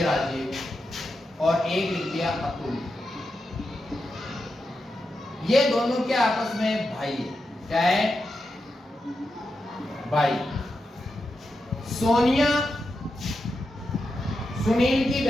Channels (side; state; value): both; normal; correlation 0.88